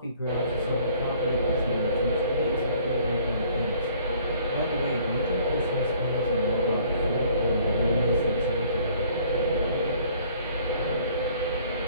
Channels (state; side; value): inverted; both; correlation -0.57